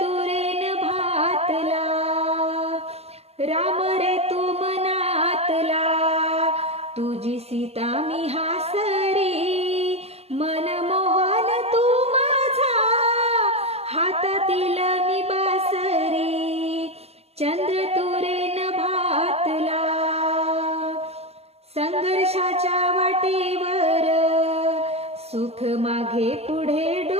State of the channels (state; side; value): late; left; 0.30 ms